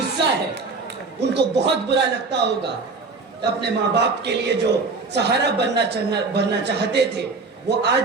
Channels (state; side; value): quieter; left; 4.1 dB